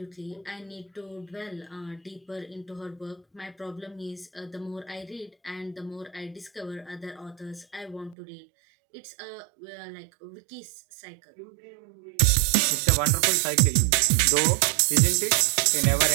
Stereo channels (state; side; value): drops out; left; at 8.2 s